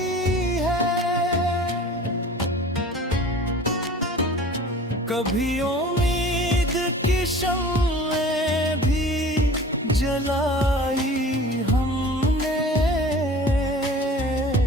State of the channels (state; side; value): normal; both; correlation 0.43